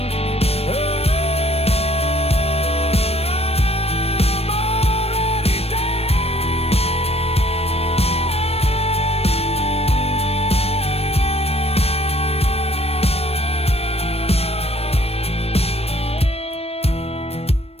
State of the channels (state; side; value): late; right; 0.29 ms